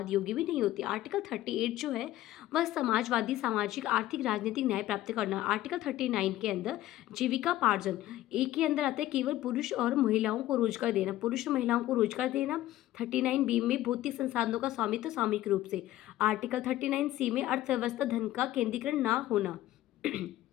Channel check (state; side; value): quieter; right; 14.8 dB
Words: योग्य भी नहीं होती। आर्टिकल 38 जो है वह समाजवादी, सामाजिक, आर्थिक, राजनीतिक न्याय प्राप्त करना। आर्टिकल 39 के अंदर जीविकापार्जन, एक के अंदर आता है केवल पुरुष और महिलाओं को रोजगार देना, पुरुष और महिलाओं को रोजगार देना। 39 बी में भौतिक संसाधनों का स्वामित्व सामूहिक रूप से। आर्टिकल 39 सी में अर्थव्यवस्था धन का केंद्रीकरण ना होना।